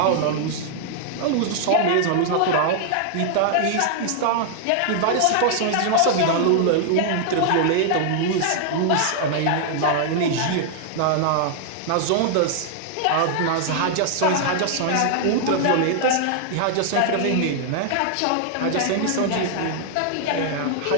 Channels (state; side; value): different; both; correlation 0.00